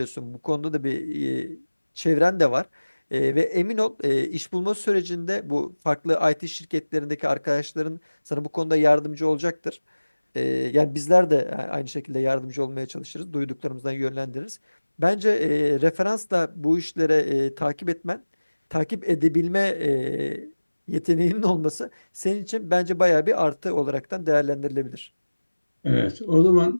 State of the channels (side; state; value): both; inverted; correlation -1.00